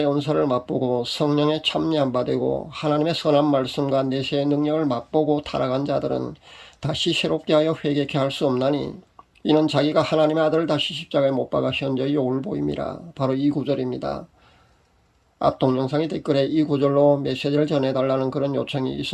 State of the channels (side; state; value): both; identical; correlation 1.00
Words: 은사를 맛보고 성령의 참여한 바 되고 하나님의 선한 말씀과 내세의 능력을 맛보고 타락한 자들은 다시 새롭게 하여 회개케 할 수 없나니 이는 자기가 하나님의 아들을 다시 십자가에 못 박아 현저히 욕을 보임이라. 바로 이 구절입니다. 앞 동영상의 댓글에 이 구절로 메시지를 전해달라는 그런 요청이